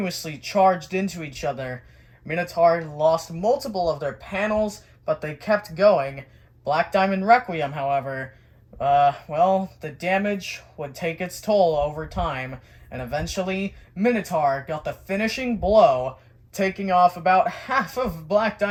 charged into each other. Minotaur lost multiple of their panels, but they kept going. Black Diamond Requiem, however, well, the damage would take its toll over time, and eventually Minotaur got the finishing blow, taking off about half of Black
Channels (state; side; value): identical; both; correlation 1.00